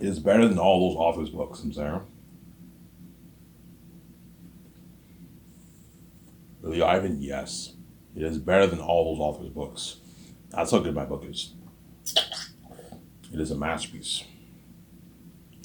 It is better than all those authors' books, I'm saying. Really, Ivan? Yes. It is better than all those authors' books. That's how good my book is. It is a masterpiece.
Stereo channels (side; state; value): both; identical; correlation 1.00